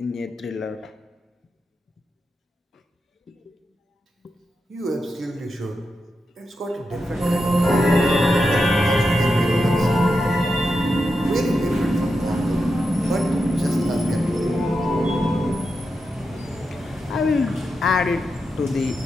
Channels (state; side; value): normal; both; correlation 0.87